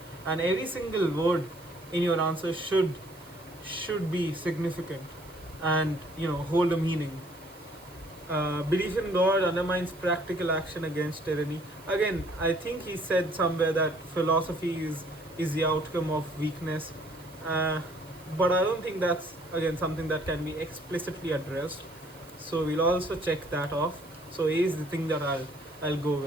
every single word in your answer should be significant and hold a meaning. Belief in God undermines practical action against tyranny. Again, I think he said somewhere that philosophy is the outcome of weakness, but I don't think that's again something that can be explicitly addressed. So we'll also check that off. So A is the thing that I'll go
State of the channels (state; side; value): noise; right; hiss, 24 dB below the sound